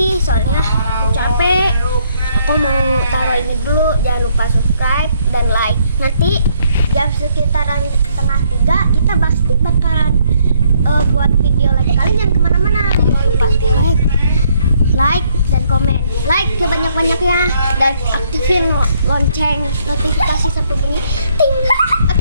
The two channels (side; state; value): both; inverted; correlation -0.69